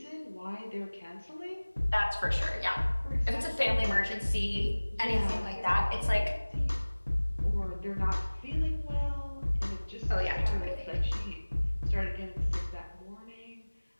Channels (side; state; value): both; inverted; correlation -1.00